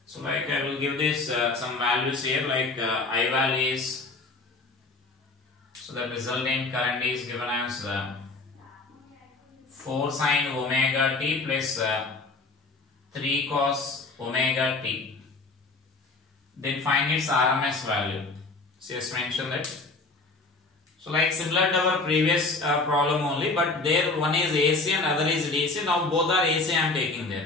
So like I will give this some values here, like I value is, so the resultant current is given as 4 sine omega t plus 3 cos omega t. Then find its RMS value. So just mention that. So like similar to our previous problem only, but there one is AC and other is DC. Now both are AC I am taking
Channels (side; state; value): right; quieter; 3.5 dB